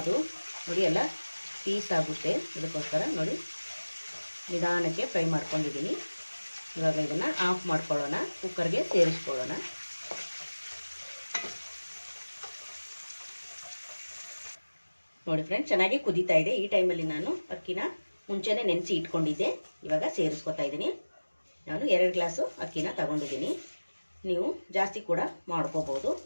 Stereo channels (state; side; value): inverted; both; correlation -1.00